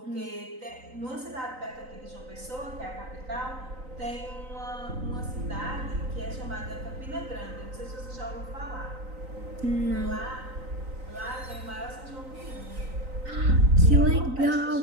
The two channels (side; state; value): left; late; 3.9 ms